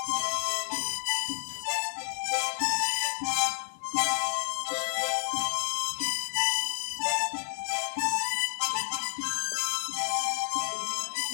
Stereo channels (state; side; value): silent; right; 58 dB below the other